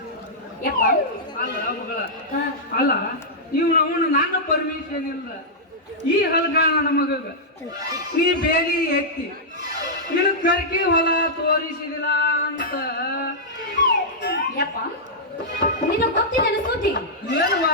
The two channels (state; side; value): normal; both; correlation -0.10